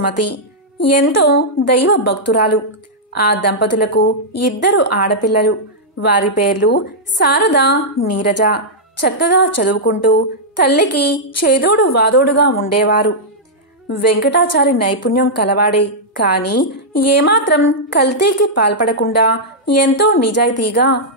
ఎంతో దైవ భక్తురాలు. ఆ దంపతులకు 2 ఆడపిల్లలు. వారి పేర్లు శారద, నీరజ. చక్కగా చదువుకుంటూ తల్లికి చేదోడు వాదోడుగా ఉండేవారు. వెంకటాచారి నైపుణ్యం కలవాడే, కాని ఏమాత్రం కల్తీకి పాల్పడకుండా ఎంతో నిజాయితీగా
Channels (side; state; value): both; normal; correlation -0.08